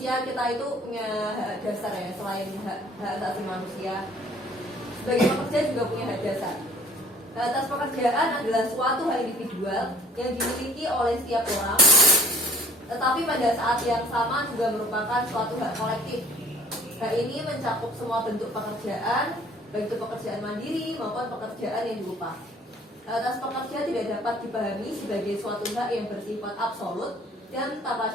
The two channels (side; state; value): both; normal; correlation 0.55